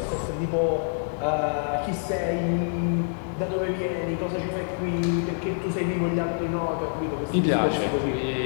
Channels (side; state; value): right; silent; 60 dB below the other